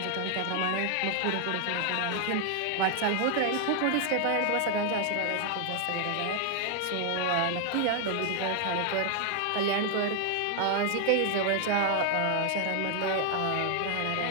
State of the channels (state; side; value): different; both; correlation 0.00